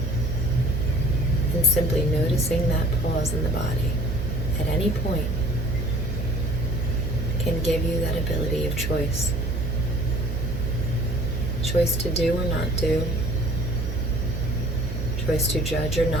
And simply noticing that pause in the body at any point can give you that ability of choice choice to do or not do, choice to judge or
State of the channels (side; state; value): both; normal; correlation 0.51